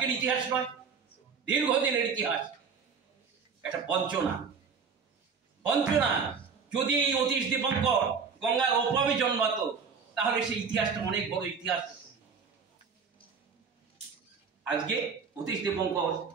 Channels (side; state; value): left; quieter; 5.8 dB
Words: ইতিহাস নয়, দীর্ঘদিনের ইতিহাস। একটা বঞ্চনা। যদি এই অতীশ দীপঙ্কর গঙ্গার ওপারে জন্মাতো তাহলে সেই ইতিহাসটা অনেক বড় ইতিহাস। আজকে অতীশ দীপঙ্কর